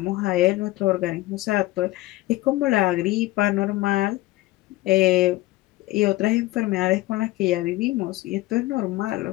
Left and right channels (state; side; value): quieter; right; 18.6 dB